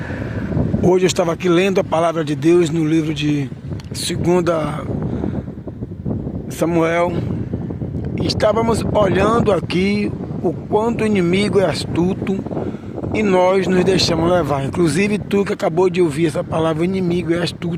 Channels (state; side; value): identical; both; correlation 1.00